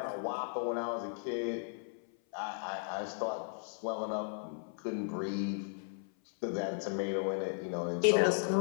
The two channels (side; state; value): right; silent; 54 dB below the other